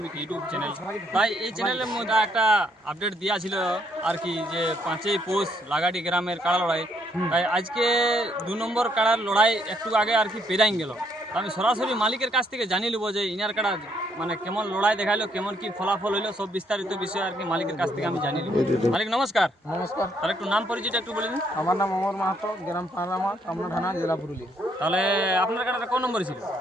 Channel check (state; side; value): normal; both; correlation 0.71